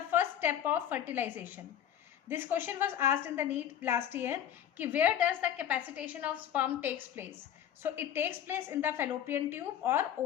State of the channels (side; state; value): right; quieter; 10.2 dB